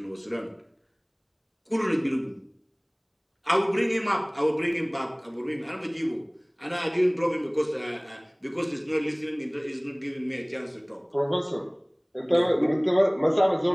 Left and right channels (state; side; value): identical; both; correlation 1.00